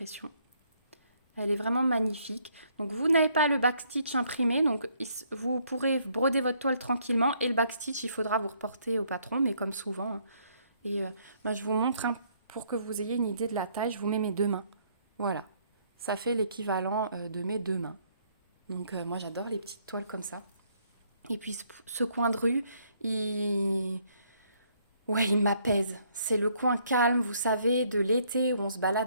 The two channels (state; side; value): inverted; both; correlation -0.68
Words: Elle est vraiment magnifique. Donc vous n'avez pas le backstitch imprimé, donc vous pourrez broder votre toile tranquillement et le backstitch, il faudra vous reporter au patron, mais comme souvent. Hein. Et je vous montre pour que vous ayez une idée de la taille, je vous mets mes 2 mains. Voilà, ça fait l'équivalent de mes 2 mains. Donc moi j'adore les petites toiles comme ça. Et puis ce coin de rue, il m'apaise. C'est le coin calme, vous savez, de l'été où on se